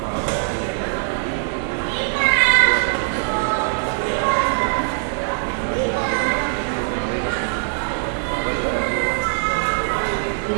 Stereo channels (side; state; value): left; silent; digital silence